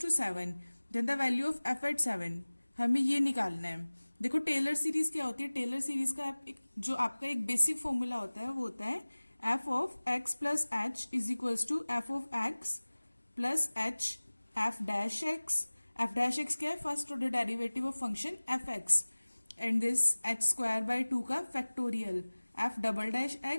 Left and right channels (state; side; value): inverted; both; correlation -1.00